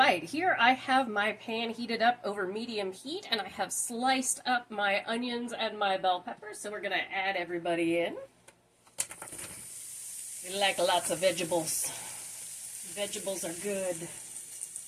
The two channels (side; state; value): both; identical; correlation 1.00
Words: here I have my pan heated up over medium heat, and I have sliced up my onions and my bell peppers, so we're going to add everybody in. We like lots of vegetables. Vegetables are good.